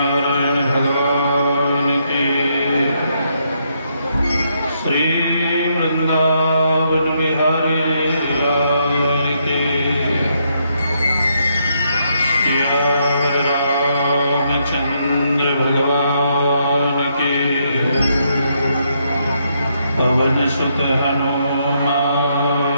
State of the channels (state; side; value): inverted; both; correlation -0.76